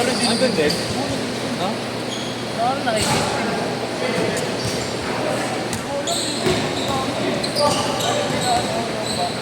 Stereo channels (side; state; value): both; identical; correlation 1.00